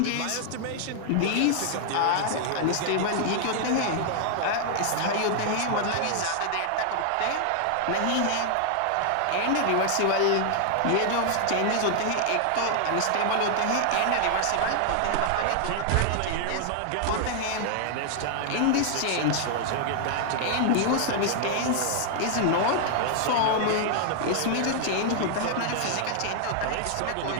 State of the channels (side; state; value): both; different; correlation -0.01